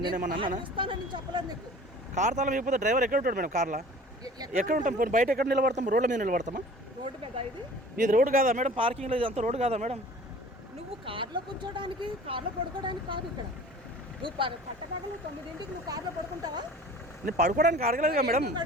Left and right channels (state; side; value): normal; both; correlation 0.45